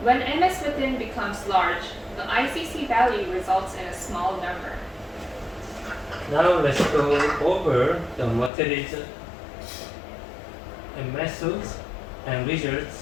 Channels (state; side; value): drops out; right; at 8.5 s